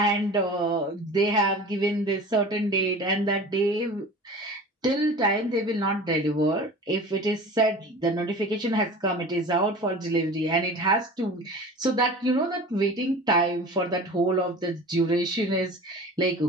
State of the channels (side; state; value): both; normal; correlation 0.38